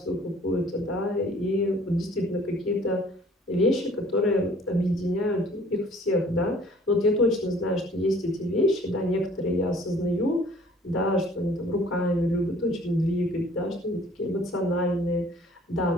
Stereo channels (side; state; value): both; normal; correlation 0.54